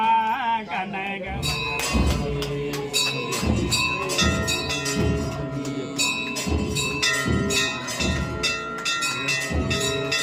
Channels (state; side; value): identical; both; correlation 1.00